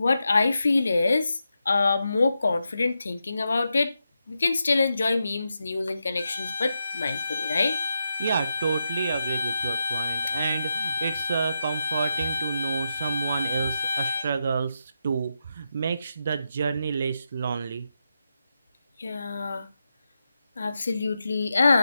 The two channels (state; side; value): inverted; both; correlation -0.87